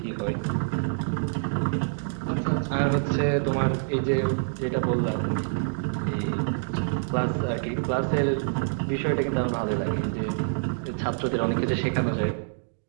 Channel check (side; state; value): left; silent; digital silence